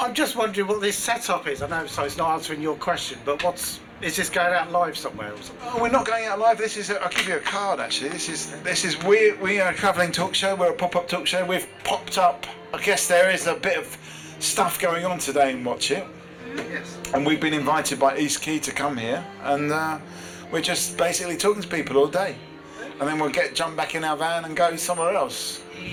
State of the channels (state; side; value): identical; both; correlation 1.00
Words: just wondering what this setup is. I know, so it's not answering your question, but is this going out live somewhere or something? Oh, we're not going out live. This is. I'll give you a card actually. This is. We are a travelling talk show. We're a pop-up talk show. We've popped up. I guess there is a bit of stuff going on today in Watchet. Yes. And we've been invited by East Quay to come here, and we're just basically talking to people all day, and then we'll jump back in our van and go somewhere else.